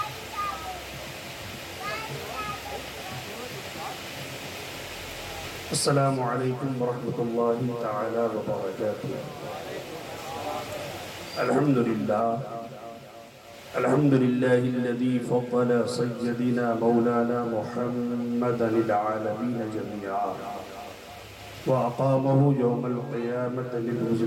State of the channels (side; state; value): both; identical; correlation 1.00